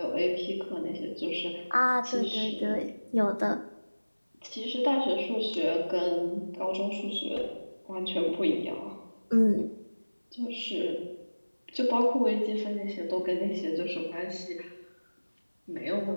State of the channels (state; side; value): inverted; both; correlation -1.00